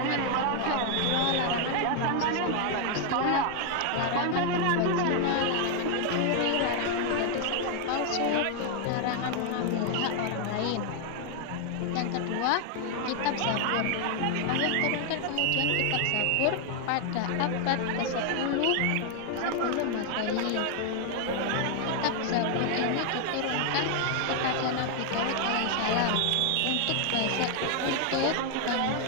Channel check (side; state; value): both; different; correlation 0.00